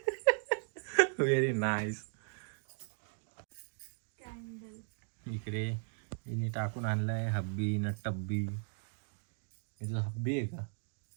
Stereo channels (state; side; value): silent; left; 53 dB below the other